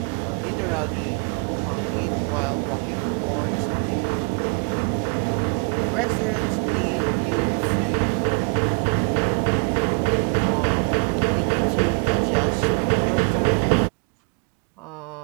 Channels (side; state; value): left; quieter; 38.2 dB